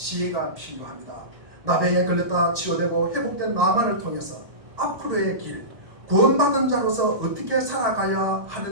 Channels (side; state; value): left; late; 1.1 ms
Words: 필요합니다. 나병에 걸렸다 치유되고 회복된 나만을 통해서 앞으로의 길, 구원받은 자로서 어떻게 살아가야